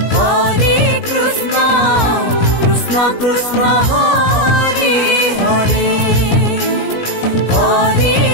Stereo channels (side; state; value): right; late; 17 ms